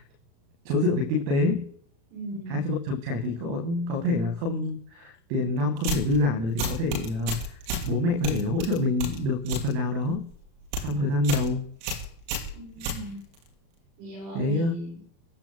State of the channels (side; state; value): left; late; 36 ms